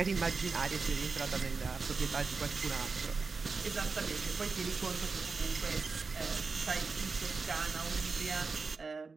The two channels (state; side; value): quieter; left; 4.5 dB